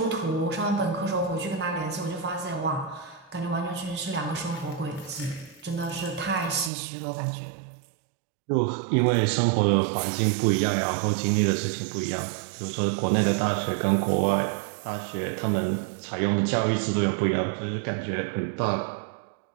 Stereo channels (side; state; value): left; drops out; at 6.7 s